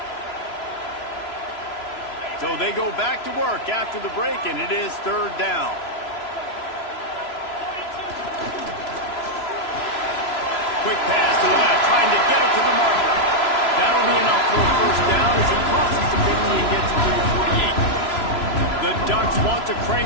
So they go back to work after the break, and it is third down. Quick pass to the left, trying to get it to the marker. That'll be enough for a first down as he crosses the 50 and gets it to the 48. The Ducks want to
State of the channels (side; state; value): right; late; 3.0 ms